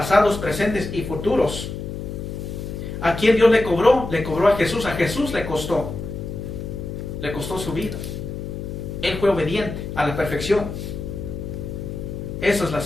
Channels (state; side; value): noise; left; hum, 7 dB below the sound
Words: presentes y futuros. ¿A quién Dios le cobró? Le cobró a Jesús le costó su vida. Él fue obediente a la perfección. Esa es la